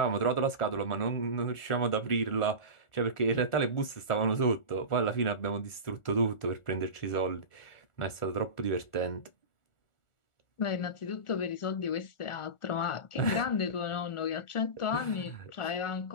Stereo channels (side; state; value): right; late; 1.4 ms